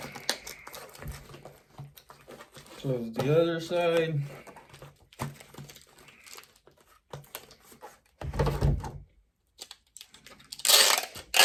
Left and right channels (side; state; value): both; identical; correlation 1.00